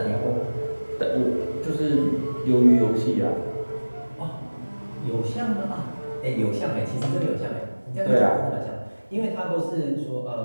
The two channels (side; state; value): both; inverted; correlation -1.00